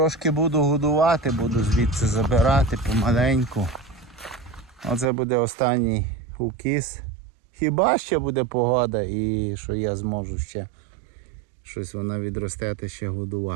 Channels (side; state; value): left; drops out; at 5.1 s